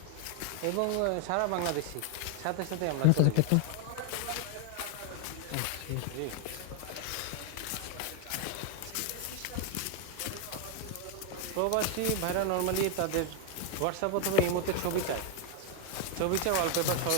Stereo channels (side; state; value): both; different; correlation 0.01